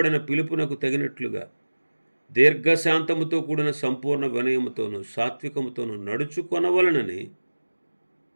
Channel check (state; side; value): inverted; both; correlation -1.00